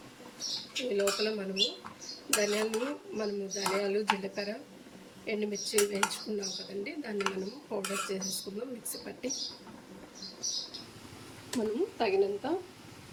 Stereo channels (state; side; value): identical; both; correlation 1.00